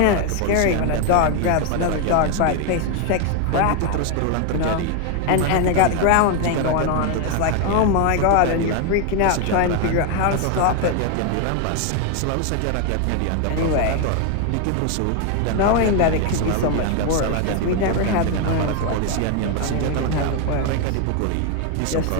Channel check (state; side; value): different; both; correlation 0.01